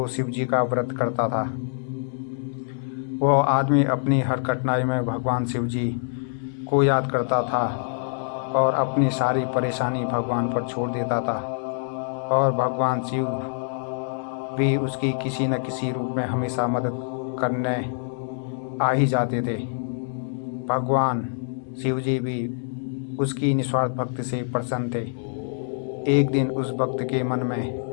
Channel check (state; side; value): silent; right; digital silence